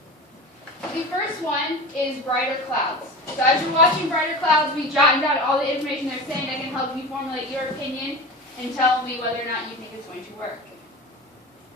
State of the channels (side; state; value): both; normal; correlation 0.30